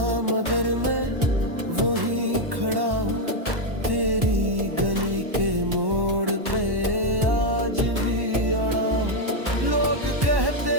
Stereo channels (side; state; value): left; late; 1.1 ms